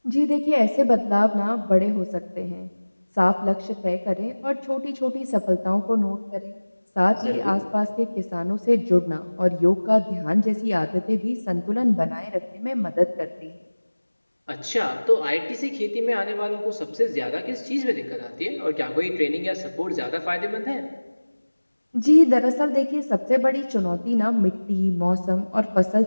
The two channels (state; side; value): inverted; both; correlation -1.00